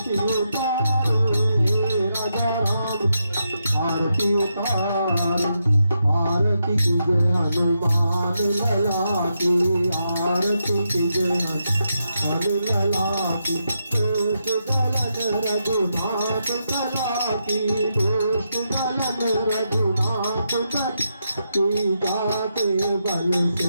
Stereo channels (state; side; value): inverted; both; correlation -0.83